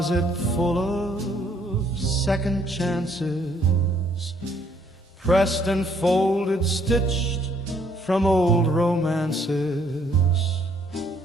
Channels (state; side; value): normal; both; correlation 0.66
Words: full of second chances, pressed and folded, stitched from old romances.